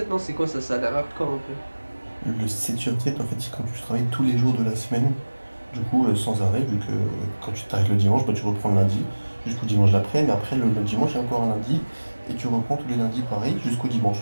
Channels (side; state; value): both; inverted; correlation -1.00